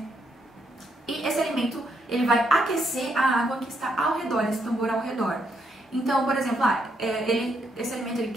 E esse alimento, ele vai aquecer a água que está ao redor, esse tambor ao redor. Então, por exemplo, esse alimento ele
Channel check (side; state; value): both; normal; correlation 0.76